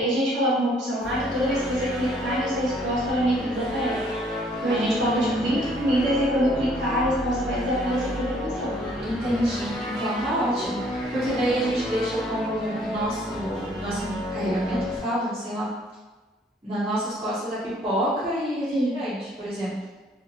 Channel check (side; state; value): both; normal; correlation 0.62